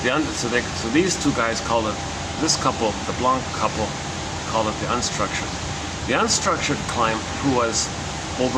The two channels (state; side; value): identical; both; correlation 1.00